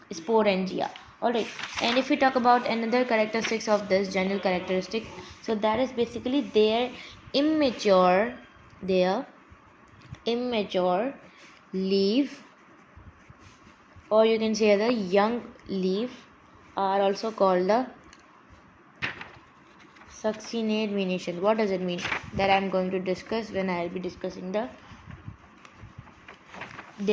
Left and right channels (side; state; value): both; identical; correlation 1.00